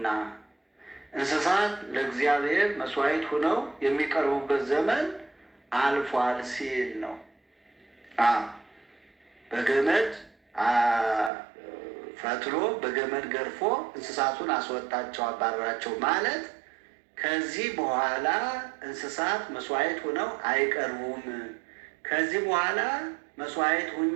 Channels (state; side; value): drops out; left; at 11.3 s